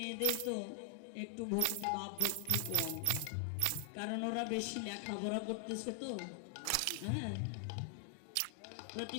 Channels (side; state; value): both; different; correlation 0.00